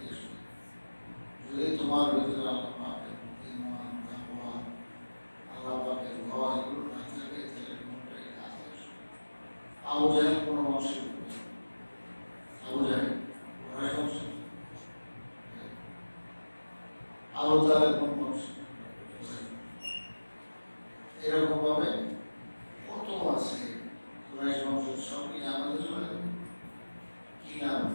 যদি তোমার ভিতরে আল্লাহ পাকের ঈমান তাকওয়া আল্লাহ পাকের ভয় এগুলো না থাকে তাহলে কোনটাই কাজ আসবে আবু জাহেল কোন বংশের আবু জাহেল কুরাইশ বংশ আবু তালেব কোন বংশ এরকম ভাবে কত আছে কুরাইশ বংশের সবই আমাদের চলে কি নাম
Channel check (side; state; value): both; inverted; correlation -1.00